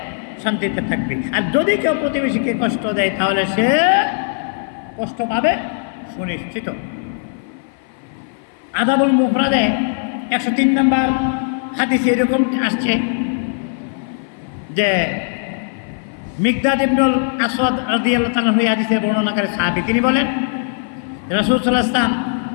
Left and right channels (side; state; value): right; silent; 57 dB below the other